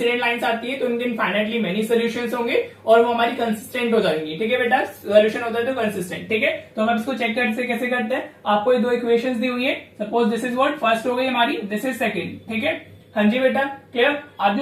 लाइंस आती है तो उनके इनफाइनाइटली मेनी सॉल्यूशंस होंगे और वो हमारी कंसिस्टेंट हो जाएंगी। ठीक है बेटा, सॉल्यूशन होता है तो कंसिस्टेंट। ठीक है, तो हम इसको चेक करते कैसे करते हैं। आपको ये 2 इक्वेशंस दी हुई है, suppose this is what first हो गई हमारी, दिस इज सेकंड। ठीक है, हाँ जी बेटा, क्लियर। अब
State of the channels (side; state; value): both; identical; correlation 1.00